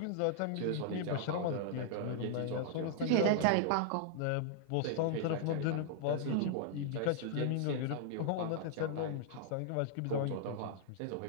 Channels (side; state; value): both; different; correlation -0.01